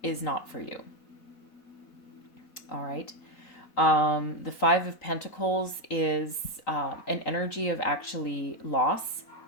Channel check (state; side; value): late; right; 3.9 ms